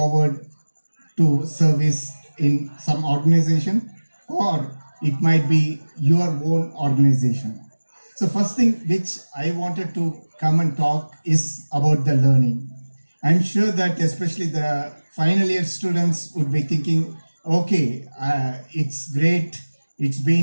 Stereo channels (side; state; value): both; inverted; correlation -1.00